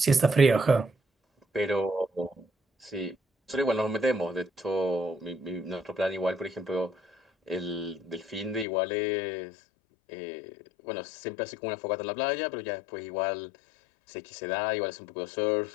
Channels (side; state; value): right; drops out; at 8.7 s